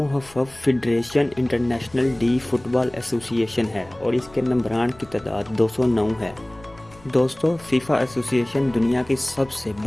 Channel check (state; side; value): noise; left; rumble, 24 dB below the sound